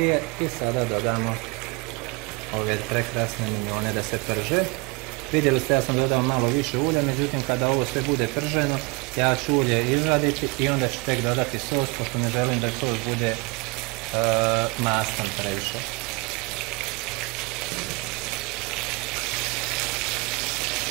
i sada dodamo ove prekrasne minjone da se prže. Vidjeli ste, ja sam dodao malo više ulja, međutim kada ovo sve bude prženo, ja ću ulje izvaditi i onda ću tek dodati sos, pošto ne želim da sos bude mastan previše.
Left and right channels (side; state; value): left; quieter; 27.4 dB